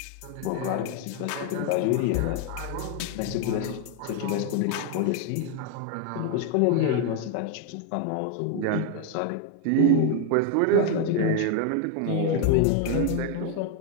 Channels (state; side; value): different; both; correlation 0.01